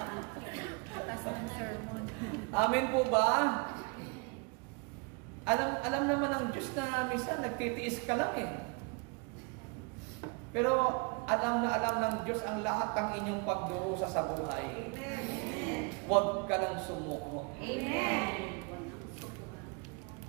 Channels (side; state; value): left; quieter; 31.8 dB